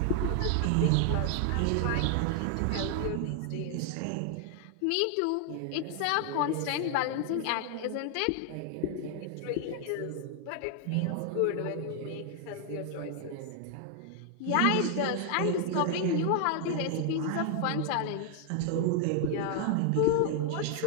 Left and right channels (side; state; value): both; different; correlation 0.00